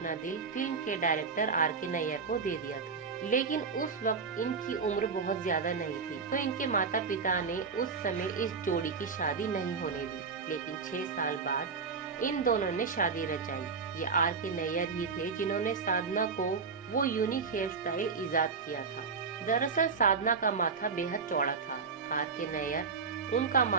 दिल फिल्म के डायरेक्टर R.K. नायर को दे दिया था। लेकिन उस वक्त इनकी उम्र बहुत ज्यादा नहीं थी, तो इनके माता पिता ने उस समय इस जोड़ी की शादी नहीं होने दी। लेकिन 6 साल बाद इन दोनों ने शादी रचाई। ये R.K. नायर ही थे जिन्होंने साधना को वो यूनिक हेयर स्टाइल इजाद किया था। दरअसल साधना का माथा बेहद चौड़ा था। R.K. नायर उनका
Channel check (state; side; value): quieter; left; 5.1 dB